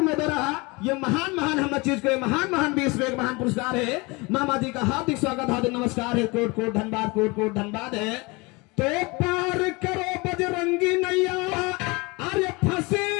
द्वारा ये महान हम चीज को महान 20 रुपए का महान पुरस्कार है। मामा जी का हार्दिक स्वागत, हार्दिक नमस्कार है, कोट कोट धन्यवाद, कोट कोट धन्यवाद है। तो पार करो बजरंगी नैया, अरे फंसे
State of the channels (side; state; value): right; quieter; 25.9 dB